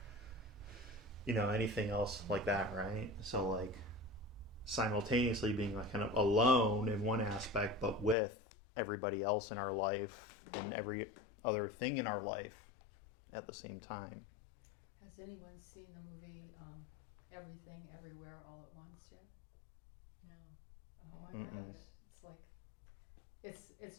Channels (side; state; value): right; drops out; at 8.2 s